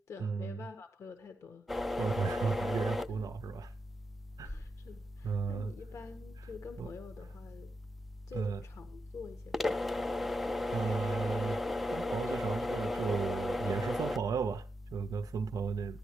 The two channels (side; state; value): both; normal; correlation 0.86